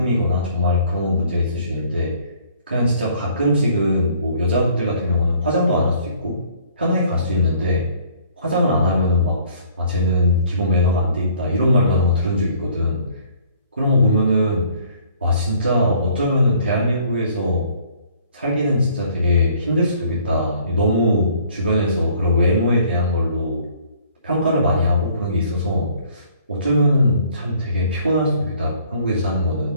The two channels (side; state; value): both; inverted; correlation -0.58